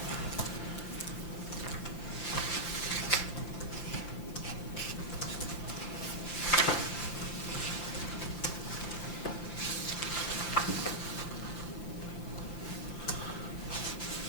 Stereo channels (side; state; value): right; late; 5.8 ms